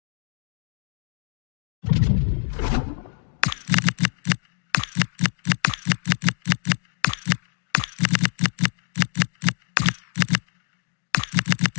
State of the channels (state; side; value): silent; right; digital silence